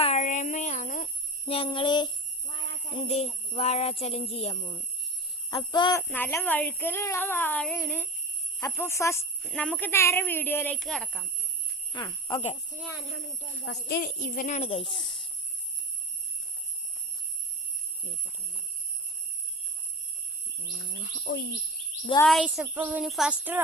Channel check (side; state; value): both; normal; correlation 0.28